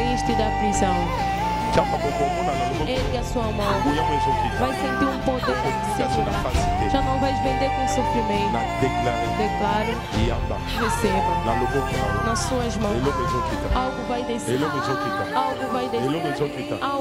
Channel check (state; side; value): identical; both; correlation 1.00